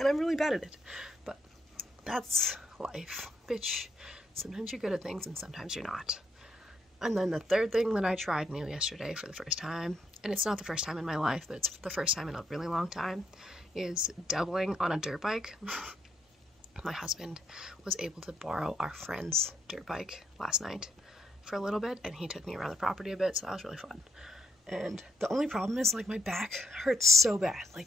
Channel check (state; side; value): normal; both; correlation 0.77